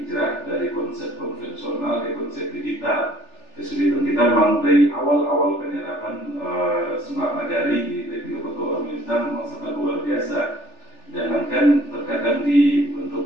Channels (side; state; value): right; late; 3.4 ms